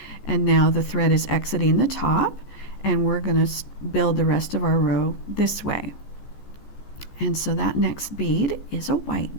And now the thread is exiting the top, and we're going to build the rest of our row this way. And so that next bead is a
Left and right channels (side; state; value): right; late; 14 ms